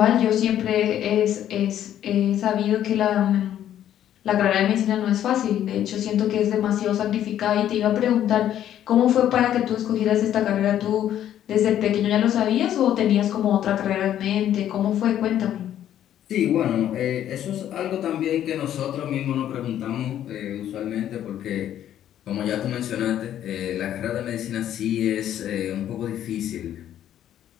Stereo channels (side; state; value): right; quieter; 11.1 dB